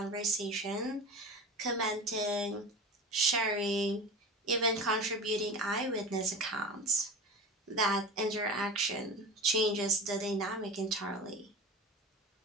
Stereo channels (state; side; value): normal; both; correlation 0.32